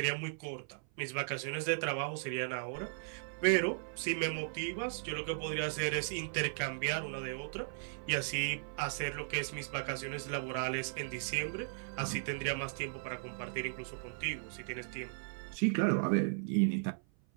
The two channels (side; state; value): left; silent; 53 dB below the other